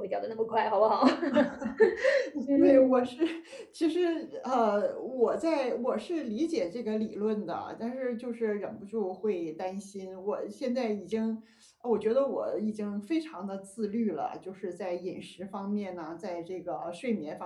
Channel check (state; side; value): identical; both; correlation 1.00